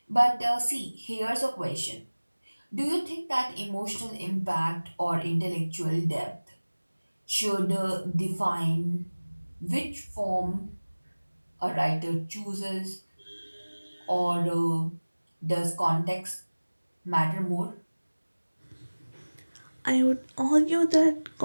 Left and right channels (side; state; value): both; inverted; correlation -1.00